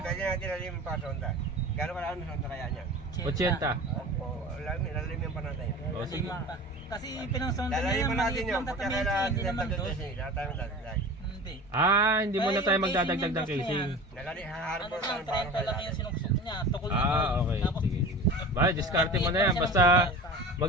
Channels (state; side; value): normal; both; correlation 0.36